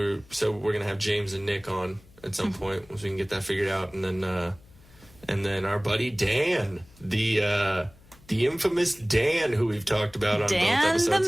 going to have James and Nick on at some point once we can get that figured out. And then our buddy Dan, the infamous Dan, who we've talked about on both episodes. Dan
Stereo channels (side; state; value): left; noise; hum, 26 dB below the sound